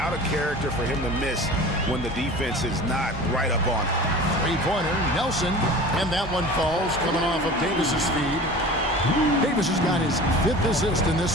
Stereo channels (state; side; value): normal; both; correlation 0.38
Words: of character for him to miss when the defense is not right up on it. Three-pointer, Nelson. And that one falls, coming off of Davis's feed. Davis has got his 5th assist in